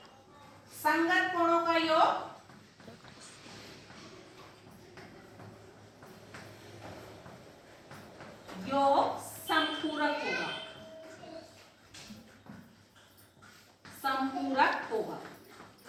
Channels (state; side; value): identical; both; correlation 1.00